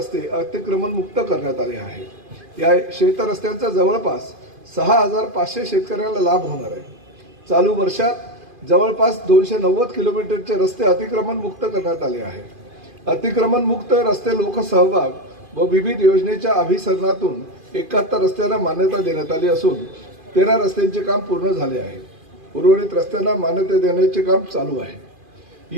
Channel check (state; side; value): late; left; 2.5 ms